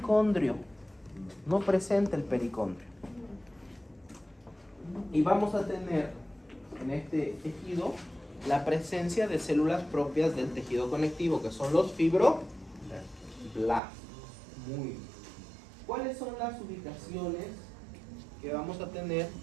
No presenta el pericondrio. Y vamos a tener en este tejido la presencia de células propias del tejido conectivo, que son los fibroblastos. Muy bien. ¿Cuáles son las ubicaciones que vamos a tener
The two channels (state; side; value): drops out; left; at 13.8 s